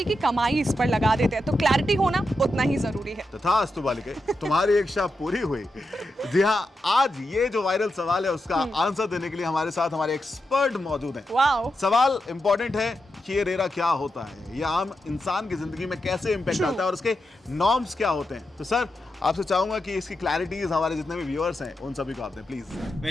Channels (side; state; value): both; normal; correlation 0.87